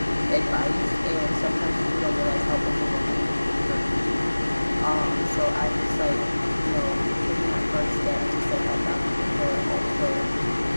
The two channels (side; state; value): both; inverted; correlation -1.00